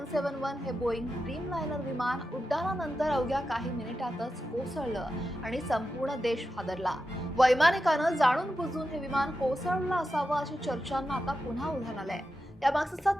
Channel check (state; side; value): normal; both; correlation 0.90